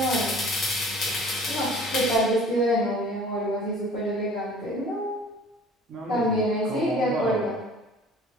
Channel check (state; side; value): normal; both; correlation 0.48